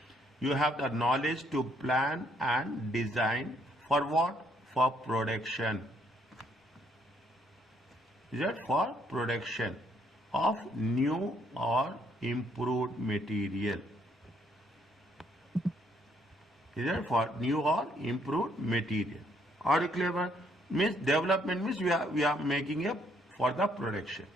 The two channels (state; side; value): normal; both; correlation 0.69